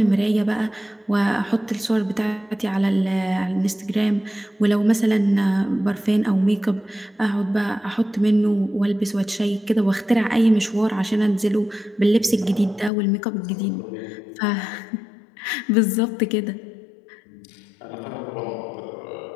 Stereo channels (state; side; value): drops out; right; at 12.9 s